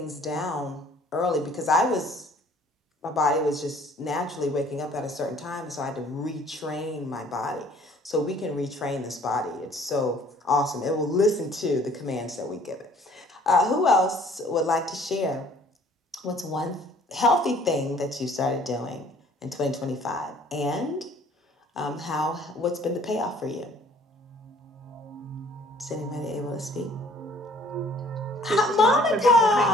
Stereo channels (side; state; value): both; normal; correlation 0.56